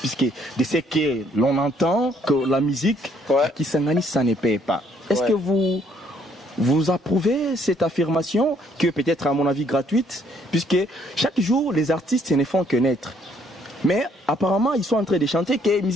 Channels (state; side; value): normal; both; correlation 0.66